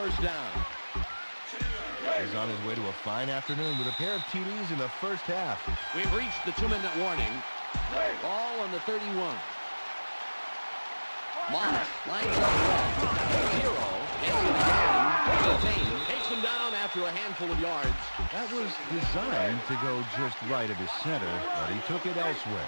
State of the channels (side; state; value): both; inverted; correlation -1.00